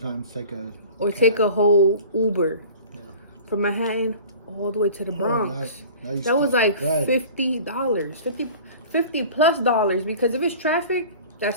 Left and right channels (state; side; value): inverted; both; correlation -0.42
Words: take a whole Uber. Yeah. From Manhattan all the way to the Bronx. That was like $50. $50 plus dollars, because if it's traffic,